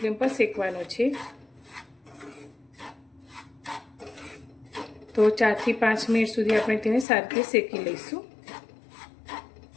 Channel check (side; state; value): right; drops out; at 7.1 s